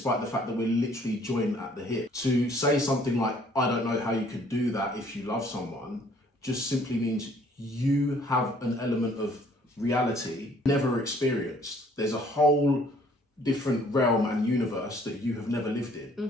the fact that we're literally joined at the hip. To say something like, I don't know how you could do that if you love someone, just simply means you have an element of reality never experienced. There's a whole different realm and universe that you have never lived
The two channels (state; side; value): normal; both; correlation 0.59